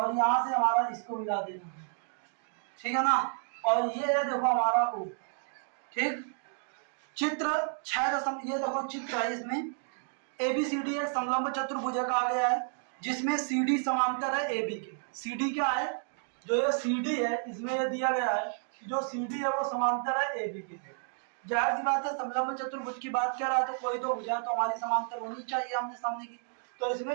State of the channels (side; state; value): left; silent; 57 dB below the other